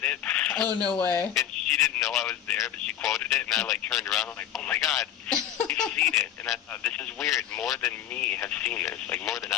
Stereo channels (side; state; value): right; quieter; 10.8 dB